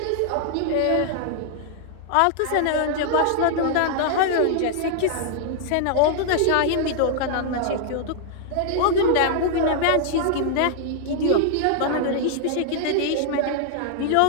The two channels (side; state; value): both; different; correlation -0.01